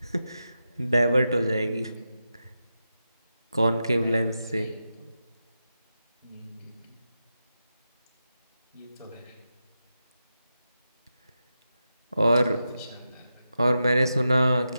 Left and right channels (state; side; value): inverted; both; correlation -0.89